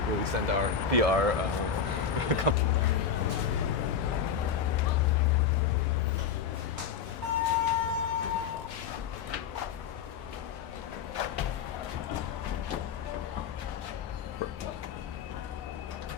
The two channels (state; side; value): quieter; right; 7.0 dB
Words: Will we send our PR company?